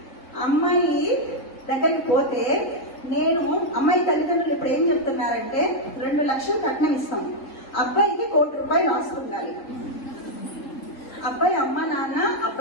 అమ్మాయి దగ్గరికి పోతే అమ్మాయి తల్లిదండ్రులు ఇప్పుడు ఏం చెప్తున్నారంటే 2 లక్షలు కట్నం ఇస్తాం, అబ్బాయికి 1 కోటి రూపాయలు ఆస్తుండాలి. అబ్బాయి అమ్మ నాన్న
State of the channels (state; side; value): late; right; 3.8 ms